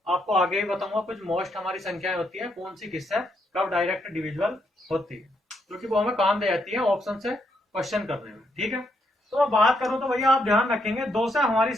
आपको आगे ही बताऊंगा कुछ मोस्ट हमारी संख्याएं होती है, कौन सी किससे कब डायरेक्ट डिविजिबल होती है, क्योंकि वो हमें काम दे जाती है ऑप्शन से क्वेश्चन करने में। ठीक है, तो मैं बात करूं तो भैया आप ध्यान रखेंगे, 2 से हमारी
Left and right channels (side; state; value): both; normal; correlation 0.77